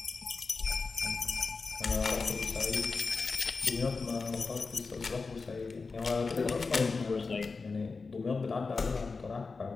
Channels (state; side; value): quieter; right; 4.3 dB